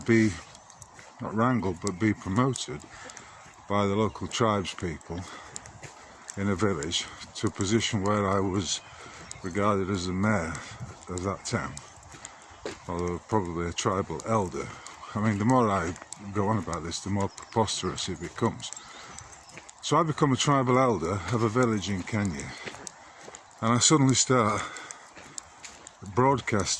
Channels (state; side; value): identical; both; correlation 1.00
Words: not wrangled, but be promoted by the local tribes people in a village to a position where I was regarded as the mayor of that town, although probably a tribal elder. I mean, the more I go on about this, the more preposterous it becomes. So I become a tribal elder of a village in Kenya, and I suddenly start